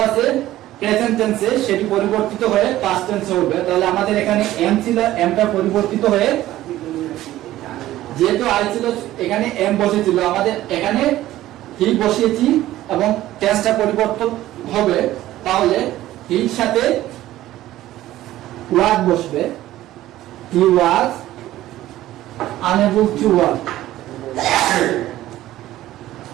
আছে প্রেজেন্ট টেন্সে, সেটি পরিবর্তিত হয়ে পাস্ট টেন্সে হবে। তাহলে আমাদের এখানে এম ছিল, এমটা পরিবর্তিত হয়ে যেহেতু আই ছিল এখানে এম বসেছিল, আমাদের এখানে হি বসিয়েছি এবং টেন্সটা পরিবর্তন হবে। তাহলে হির সাথে ওয়াজ বসবে, he was unable to work,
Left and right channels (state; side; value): quieter; left; 14.7 dB